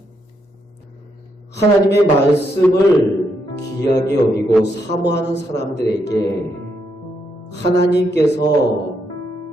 하나님의 말씀을 귀하게 여기고 사모하는 사람들에게 하나님께서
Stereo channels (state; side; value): normal; both; correlation 0.78